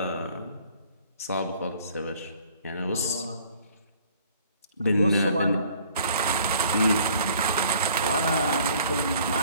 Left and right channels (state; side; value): inverted; both; correlation -0.56